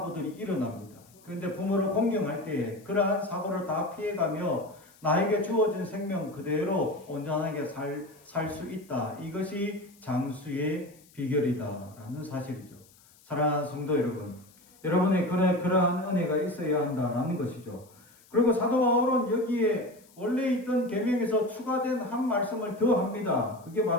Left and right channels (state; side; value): noise; left; hiss, 27 dB below the sound